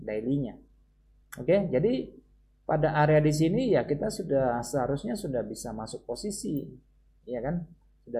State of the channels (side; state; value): both; identical; correlation 1.00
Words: daily-nya. Oke, jadi pada area di sini ya kita seharusnya sudah bisa masuk posisi, ya kan?